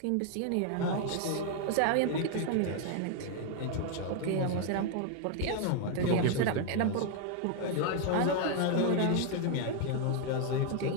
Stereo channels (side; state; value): both; different; correlation 0.00